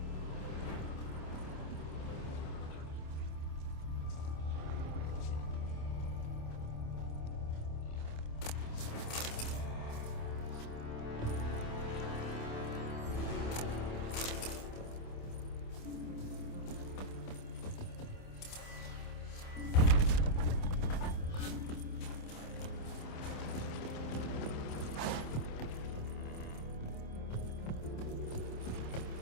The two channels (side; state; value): right; late; 27 ms